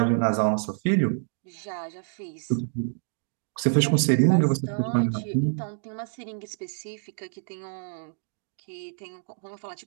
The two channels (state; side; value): silent; left; digital silence